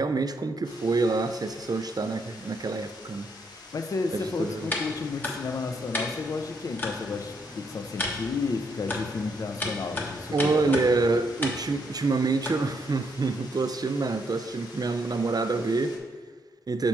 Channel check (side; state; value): both; normal; correlation 0.75